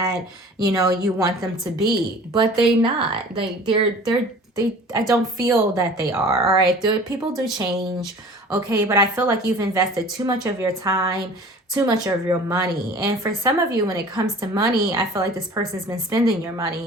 you know, you want them to be, but they're not. I don't feel that they are. All right. People do change. Okay. But I feel like you've invested too much of your time, too much of your money. And for some of you, when it comes to money, I feel like this person's been spending your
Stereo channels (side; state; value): both; normal; correlation 0.44